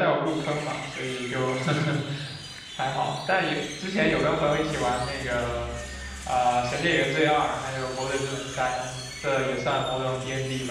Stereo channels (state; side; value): identical; both; correlation 1.00